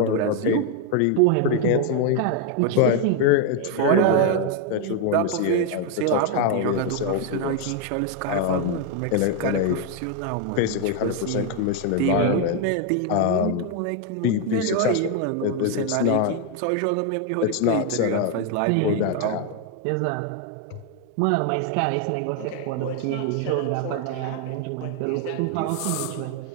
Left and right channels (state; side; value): different; both; correlation 0.01